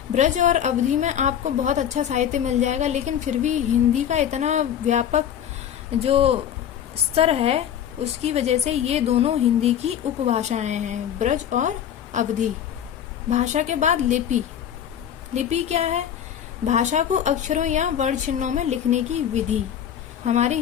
ब्रज और अवधि में आपको बहुत अच्छा साहित्य मिल जाएगा, लेकिन फिर भी हिंदी का इतना व्यापक जो स्तर है उसकी वजह से ये दोनों हिंदी की उपभाषाएं हैं, ब्रज और अवधि। भाषा के बाद लिपि। लिपि क्या है? भाषा को अक्षरों या वर्ण चिन्हों में लिखने की विधि। हमारी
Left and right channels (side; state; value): right; quieter; 9.6 dB